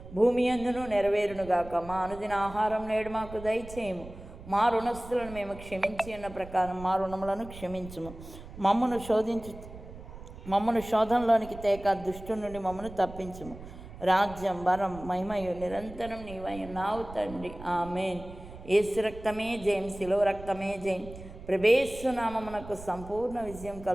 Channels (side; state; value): right; noise; rumble, 15 dB below the sound